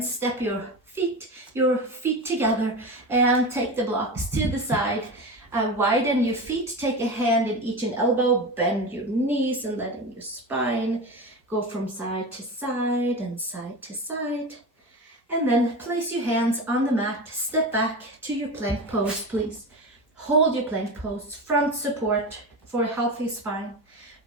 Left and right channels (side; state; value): both; normal; correlation 0.25